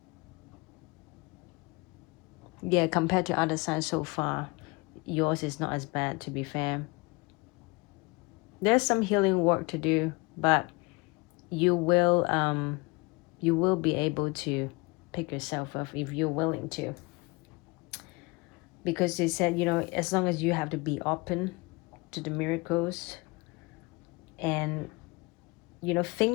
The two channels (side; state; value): right; quieter; 26.0 dB